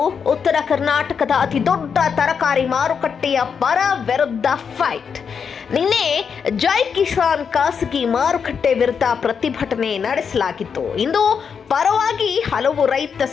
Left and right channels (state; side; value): quieter; right; 6.5 dB